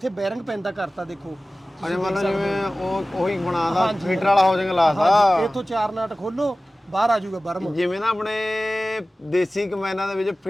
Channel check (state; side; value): normal; both; correlation 0.97